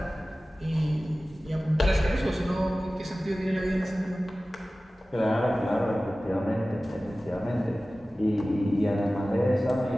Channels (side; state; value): both; normal; correlation 0.97